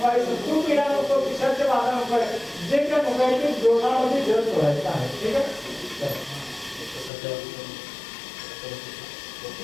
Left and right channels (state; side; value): drops out; right; at 7.1 s